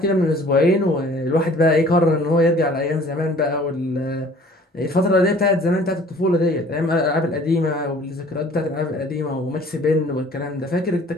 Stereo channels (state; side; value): normal; both; correlation 0.51